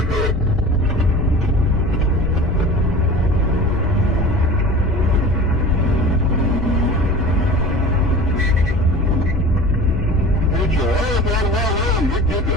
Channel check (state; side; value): noise; left; hum, 7 dB below the sound